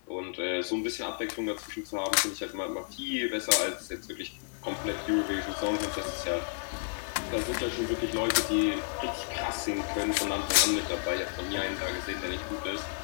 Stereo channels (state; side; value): silent; right; digital silence